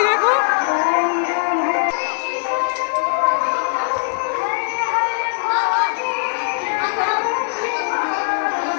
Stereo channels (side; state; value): right; silent; digital silence